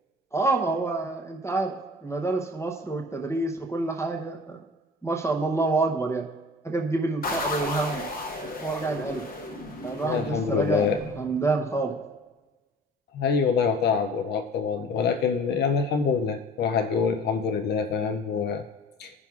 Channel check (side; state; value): both; normal; correlation 0.44